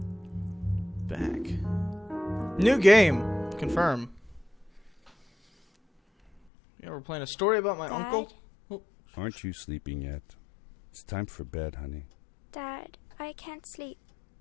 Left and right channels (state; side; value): drops out; right; at 6.4 s